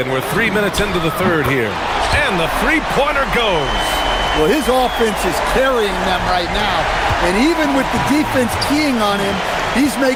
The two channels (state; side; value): identical; both; correlation 1.00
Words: we're 3 minutes into the third here. And the three-pointer goes. Well, his offense is carrying them right now. And even with the defense keying on him, he's